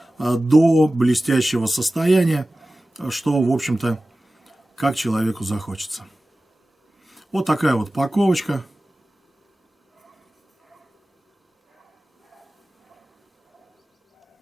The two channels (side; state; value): both; normal; correlation 0.96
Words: до блестящего состояния, что, в общем-то, как человеку захочется. Вот такая вот паковочка.